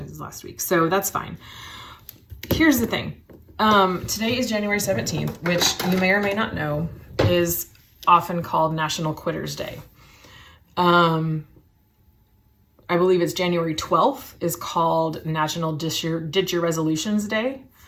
last week. So that's fine. Here's the thing. Today is January 17th, which you may or may not know is often called National Quitters Day. I believe it's January 12th is called National Ditch Your Resolutions Day,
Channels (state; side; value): identical; both; correlation 1.00